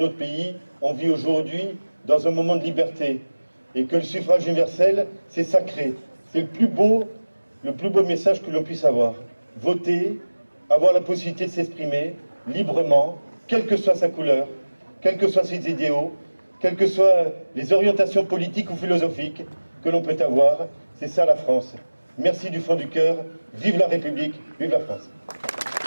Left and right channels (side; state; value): both; inverted; correlation -1.00